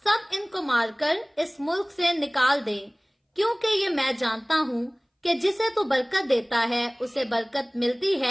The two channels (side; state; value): both; identical; correlation 1.00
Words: इनको मारकर इस मुल्क से निकाल दें, क्योंकि ये मैं जानता हूं कि जिसे तू बरकत देता है उसे बरकत मिलती